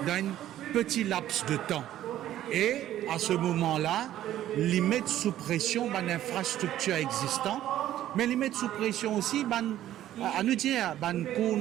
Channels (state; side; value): quieter; left; 12.7 dB